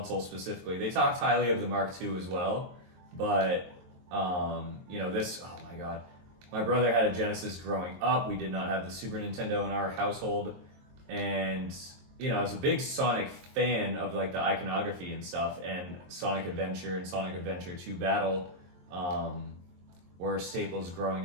specifically. They talked highly of the Mark II as well, but this, oh my god. My brother had a Genesis growing up. We did not have the Super Nintendo in our household, and I was a big Sonic fan of like the iconography and stuff, and Sonic Adventure and Sonic Adventure 2 Battle were staples growing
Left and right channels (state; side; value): late; left; 22 ms